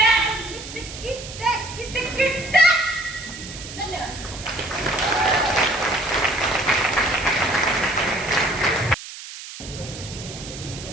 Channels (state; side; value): noise; right; hiss, 12 dB below the sound